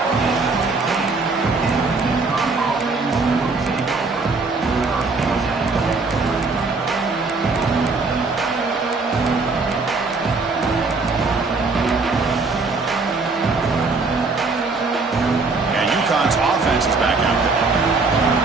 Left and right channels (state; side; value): quieter; left; 4.0 dB